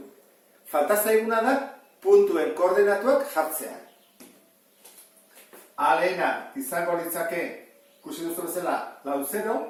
Falta zaiguna da puntuen koordenatuak jartzea. A lehena izango litzake, ikusi duzu bezala, lau 0,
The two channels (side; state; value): both; identical; correlation 1.00